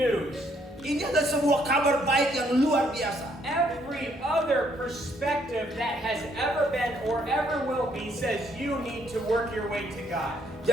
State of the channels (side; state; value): both; normal; correlation 0.69